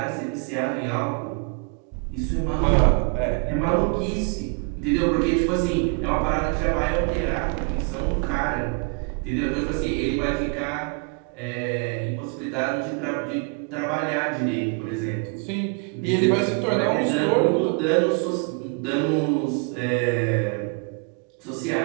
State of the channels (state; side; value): quieter; left; 36.8 dB